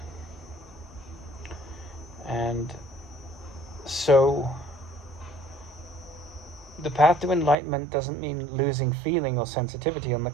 And so the path to enlightenment doesn't mean losing feeling or sensitivity. On the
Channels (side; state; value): left; drops out; at 7.6 s